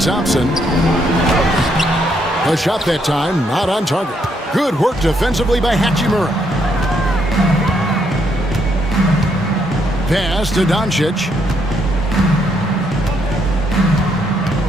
A shot that time, not on target. Good work defensively by Hachimura. Pass to Doncic.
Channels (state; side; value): normal; both; correlation 0.74